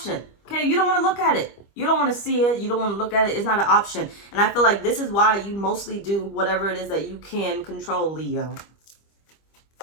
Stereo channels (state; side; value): late; right; 25 ms